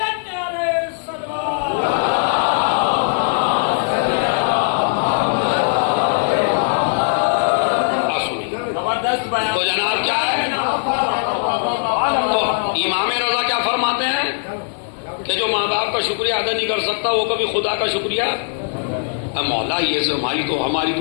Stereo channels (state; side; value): silent; right; 60 dB below the other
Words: تو جناب کیا ہے، تو امام رضا کیا فرماتے ہیں کہ جو ماں باپ کا شکریہ ادا نہیں کر سکتا وہ کبھی خدا کا شکریہ۔ مولا یہ ہماری